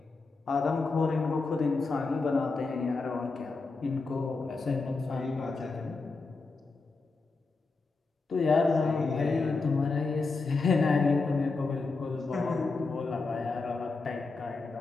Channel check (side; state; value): right; quieter; 3.9 dB